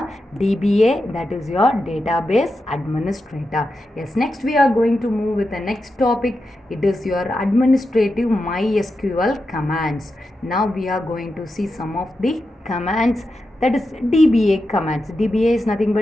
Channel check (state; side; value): normal; both; correlation 0.89